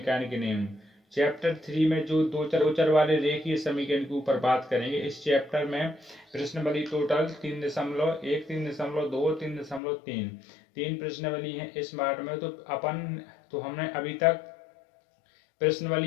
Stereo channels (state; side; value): drops out; right; at 9.8 s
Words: के नियम। चैप्टर 3 में जो दो चर वाले रेखीय समीकरण के ऊपर बात करेंगे। इस चैप्टर में प्रश्नावली टोटल 3.1, 3.2, 3.3 तीन प्रश्नावली है इस पार्ट में। तो हमने अभी तक